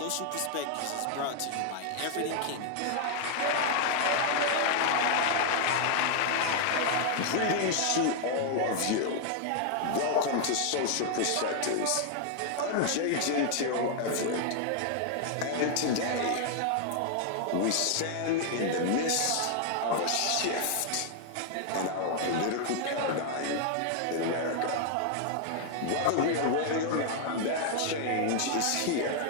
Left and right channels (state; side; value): different; both; correlation 0.00